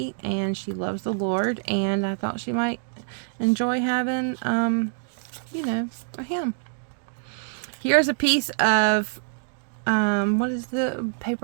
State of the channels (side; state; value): left; silent; digital silence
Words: and she loves the Lord, and I thought she might enjoy having, you know, a hymn. Here's a piece of what is the